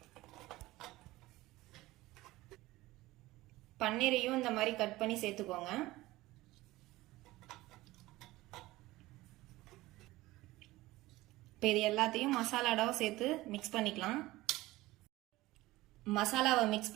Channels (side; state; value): left; quieter; 18.4 dB